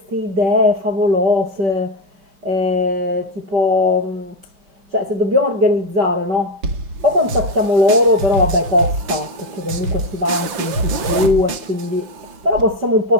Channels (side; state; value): left; late; 5.7 ms